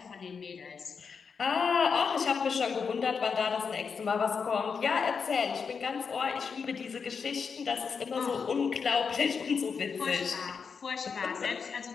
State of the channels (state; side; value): quieter; right; 5.8 dB